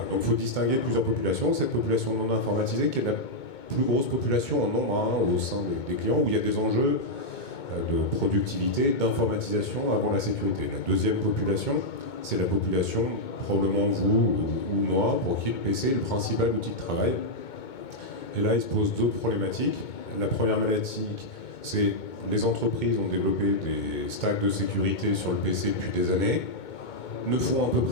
il faut distinguer plusieurs populations. Cette population non informatisée qui est la plus grosse population en nombre au sein des clients, où il y a des enjeux de productivité, d'informatisation avant la sécurité. La deuxième population, c'est la population, probablement vous ou moi, pour qui le PC est le principal outil de travail. Et là, il se pose deux problématiques. La première problématique, c'est les entreprises ont développé des stacks de sécurité sur le PC depuis des années, ne font à peu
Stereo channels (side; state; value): right; late; 2.2 ms